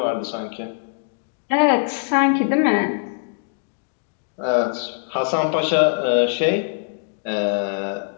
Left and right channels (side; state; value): right; silent; digital silence